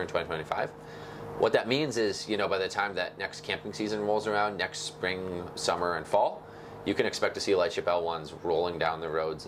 in 2025. What that means is, by the time that next camping season rolls around, next spring, summer, and fall, you can expect to see Lightship L1s rolling down the roads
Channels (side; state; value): both; identical; correlation 1.00